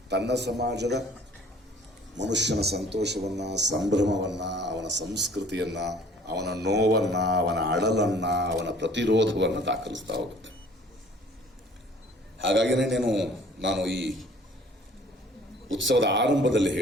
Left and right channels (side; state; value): both; normal; correlation 0.53